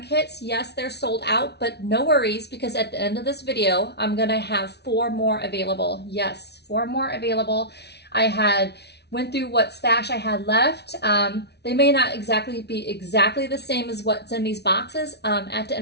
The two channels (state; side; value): late; right; 0.49 ms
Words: kits. Yes, they're sold out, but no worries, because at the end of this video, I'm gonna have 4 more available. Yes, 4 more available. I went through what stash I had left. They may not be exactly the same as what's in these boxes. At the